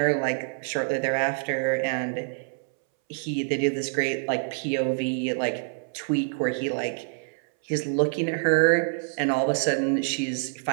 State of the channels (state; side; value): silent; left; 61 dB below the other